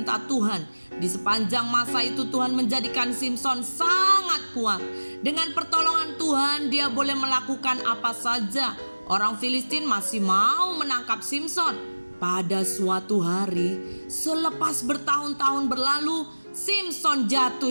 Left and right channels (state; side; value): inverted; both; correlation -1.00